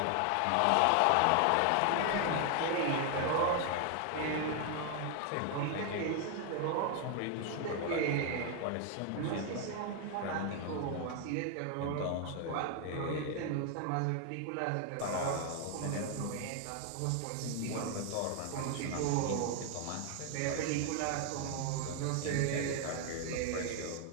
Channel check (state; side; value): different; both; correlation 0.00